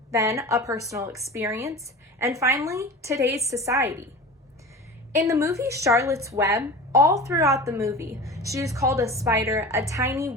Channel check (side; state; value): both; normal; correlation 0.34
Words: then a personal experience, and finally, today's society. In the movie Charlotte's Web, all throughout the movie, she is called a spider, a tiny,